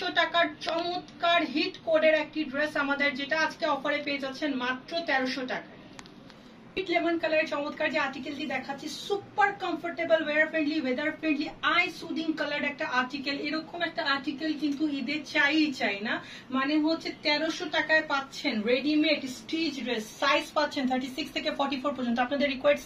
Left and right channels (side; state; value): both; identical; correlation 1.00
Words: টাকার চমৎকার হিট কোডের একটি ড্রেস আমাদের, যেটা আজকে অফারে পেয়ে যাচ্ছেন মাত্র 1300 টাকা। লেমন কালারের চমৎকার যে আর্টিকেলটি দেখাচ্ছি, super comfortable, wear friendly, weather friendly, eye soothing colour একটা আর্টিকেল। এরকম একটা আর্টিকেল কিন্তু ঈদে চাই না, মানে হচ্ছে 1300 টাকায় পাচ্ছেন রেডিমেড স্টিচ ড্রেস। সাইজ পাচ্ছেন 36 থেকে 44 পর্যন্ত, আপনাদের রিকোয়ার্ড